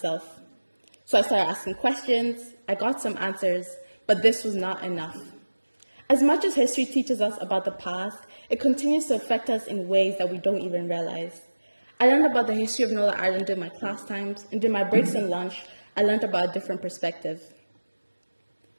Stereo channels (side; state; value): both; inverted; correlation -1.00